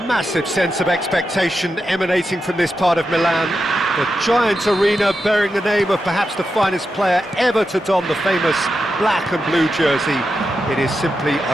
massive sense of expectation emanating from this part of Milan. The giant arena bearing the name of perhaps the finest player ever to don the famous black and blue jersey. It is simply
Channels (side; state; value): both; normal; correlation 0.88